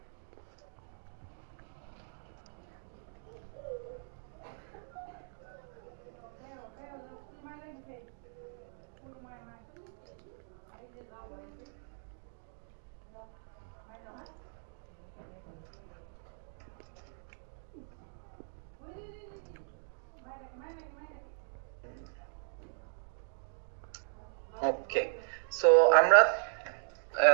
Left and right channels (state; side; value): silent; left; digital silence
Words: ওকে, সো আমরা